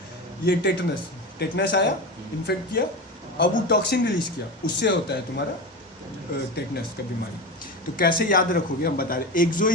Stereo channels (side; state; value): both; normal; correlation 0.24